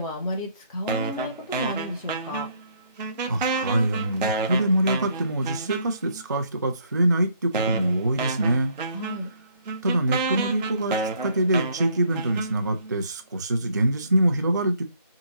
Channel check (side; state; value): both; inverted; correlation -0.67